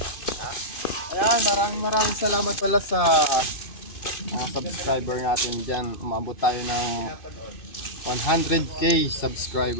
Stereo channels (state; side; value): late; right; 2.5 ms